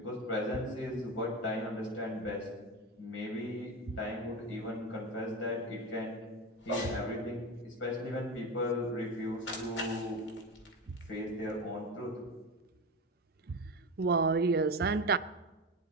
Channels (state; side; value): normal; both; correlation 0.21